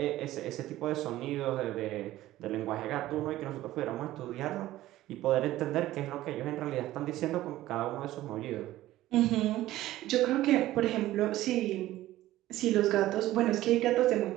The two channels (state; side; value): quieter; left; 15.3 dB